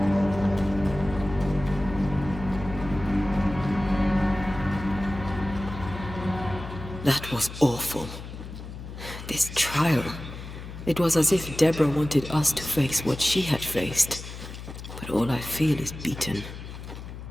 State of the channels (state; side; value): noise; left; hum, 11 dB below the sound